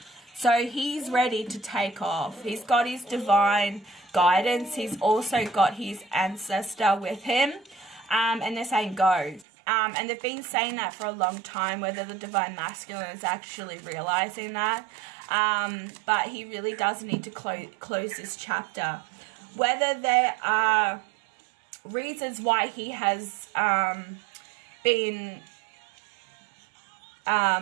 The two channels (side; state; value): left; drops out; at 9.5 s